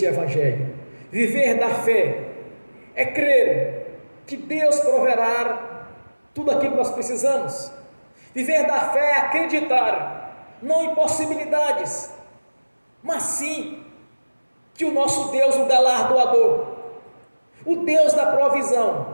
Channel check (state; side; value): inverted; both; correlation -1.00